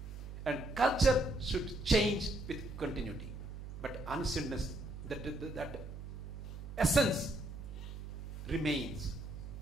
And culture should change with continuity. But ancientness, that essence remains.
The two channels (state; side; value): noise; right; hum, 9 dB below the sound